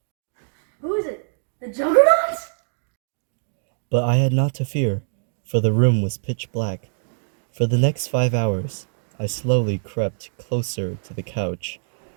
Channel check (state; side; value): silent; left; digital silence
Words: Who is it? The Juggernaut? But I had not to fear, for the room was pitch black. For the next 5 hours, I slowly crept closer to the couch